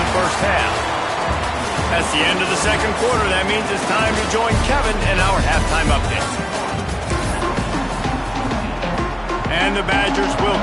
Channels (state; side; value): identical; both; correlation 1.00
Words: first half. That's the end of the second quarter. That means it's time to join Kevin in our halftime update. And the Badgers will